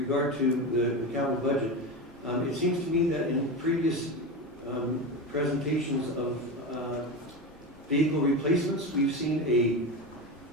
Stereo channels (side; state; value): both; normal; correlation 0.21